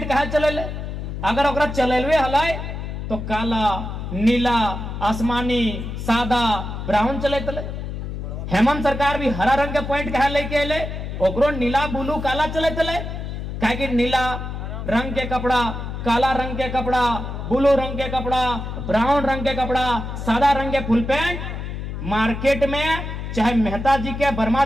कहा चले ले अगर ओकरा चलेलवे हलाए तो काला नीला आसमानी सादा ब्राउन चले तले। हेमंत सरकार भी हरा रंग के पॉइंट कहा लेके अले ओकरो नीला ब्लू काला चले तले काहे कि नीला रंग के कपड़ा काला रंग के कपड़ा ब्लू रंग के कपड़ा ब्राउन रंग के कपड़ा सादा रंग के फुल पैंट मार्केट में चाहे मेहता जी के वर्मा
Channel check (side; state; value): left; noise; hum, 6 dB below the sound